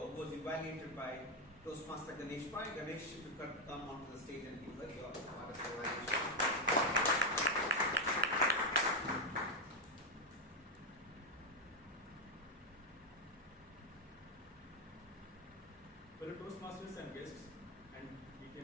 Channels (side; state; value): both; normal; correlation 0.04